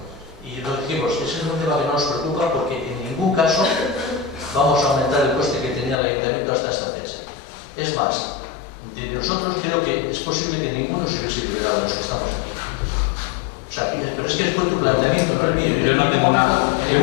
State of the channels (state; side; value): drops out; right; at 6.0 s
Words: Y lo dijimos, ese es un tema que no nos preocupa porque en ningún caso vamos a aumentar el coste que tenía el ayuntamiento hasta esta fecha. Es más, de nosotros creo que es posible que ninguno se hubiese liberado de los que estamos aquí. O sea, pero es que fue tu planteamiento, no el mío. Yo no tengo nada. En